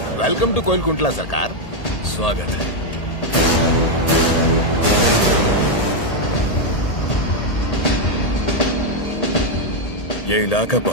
वेलकम टू कोइलकुंटला सरकार। स्वागत है। ये इलाका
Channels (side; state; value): right; late; 1.8 ms